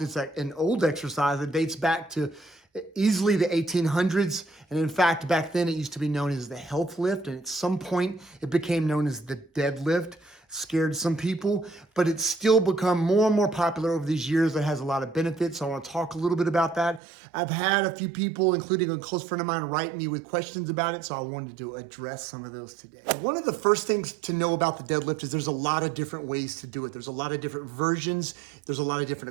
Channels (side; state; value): left; drops out; at 17.0 s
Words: It's an old exercise that dates back to easily the 1800s. And in fact, back then it used to be known as the health lift. And at some point it became known as the deadlift. Scared some people, but it's still become more and more popular over these years. It has a lot of benefits. So I want to talk a little bit about that. I've had a few people, including a close friend of mine, write me with questions about it. So I wanted to address some of those today. One of the first things to know about the deadlift is there's a lot of different ways to do it. There's a lot of different versions. There's a lot of different